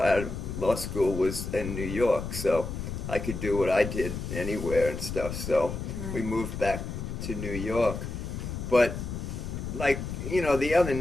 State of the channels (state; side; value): noise; left; rumble, 6 dB below the sound